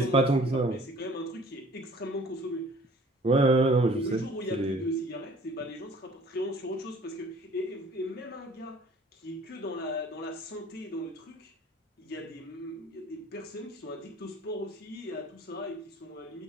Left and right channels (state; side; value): normal; both; correlation 0.52